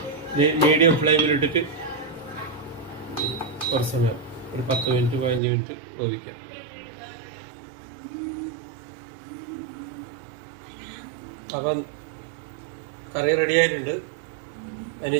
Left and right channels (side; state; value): left; drops out; at 5.4 s